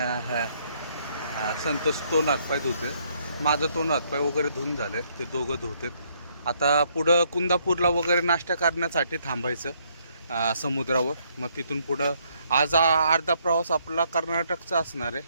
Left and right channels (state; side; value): inverted; both; correlation -0.70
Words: संतोष तोंड हातपाय धुते. माझं तोंड हातपाय वगैरे धुवून झाले, ते दोघं धुतेत. आता पुढं कुंदापूरला वगैरे नाश्ता करण्यासाठी थांबायचं समुद्रावर. मग तिथून पुढं आज अर्धा प्रवास आपला कर्नाटकचा असणार